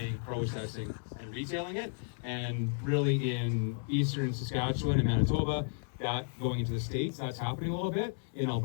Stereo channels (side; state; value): right; silent; digital silence